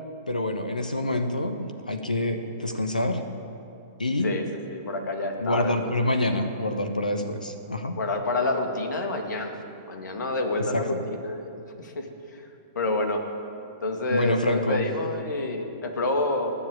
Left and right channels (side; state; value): both; inverted; correlation -0.56